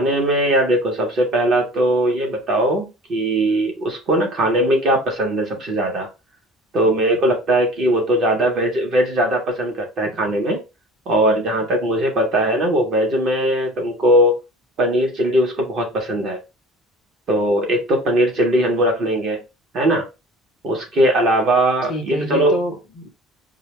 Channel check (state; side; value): normal; both; correlation 0.43